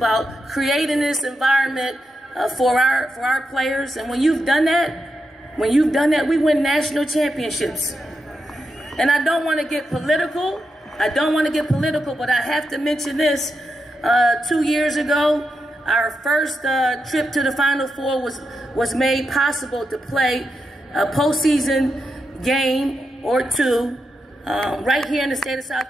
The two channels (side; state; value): both; normal; correlation 0.86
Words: creating this environment for our players. And when you've done that, we win national championships. And I don't want to get political. But I have to mention this. 2 years ago, our first trip to the Final Four was made possible to play a postseason game or two right here in the state of